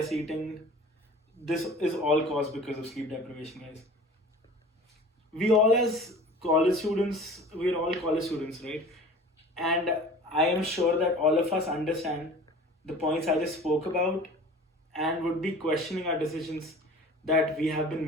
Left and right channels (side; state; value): both; normal; correlation 0.42